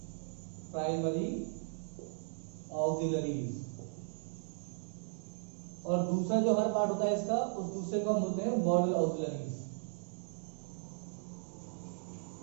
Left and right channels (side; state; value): left; silent; digital silence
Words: प्राइमरी ऑक्सिलरीज। और दूसरा जो हमारा पार्ट होता है इसका, उस दूसरे को हम बोलते हैं मॉडल ऑक्सिलरीज।